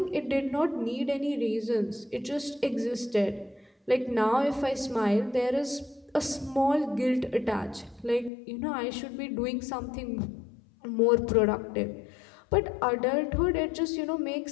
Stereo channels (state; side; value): drops out; right; at 8.3 s